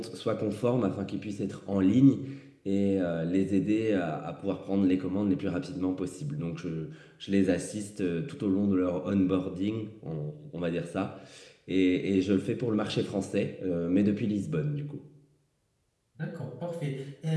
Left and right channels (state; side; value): identical; both; correlation 1.00